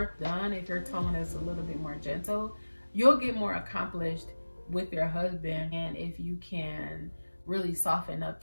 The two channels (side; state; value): both; inverted; correlation -1.00